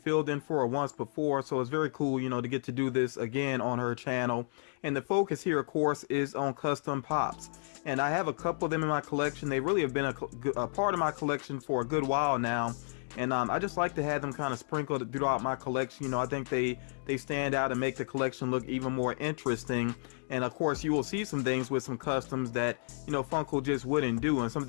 in for her once before, so it's very cool, to get to do this again on her channel. And the focus here, of course, is on custom pops. And I have a couple of them in my collection. They really have been a part of my collection for a good while now. And I just like to have them kind of sprinkled throughout my collection. I think they stand out and make the collection look even more interesting. And of course, you will see some things with some customs that, Funko just wouldn't do, and some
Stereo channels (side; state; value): right; silent; digital silence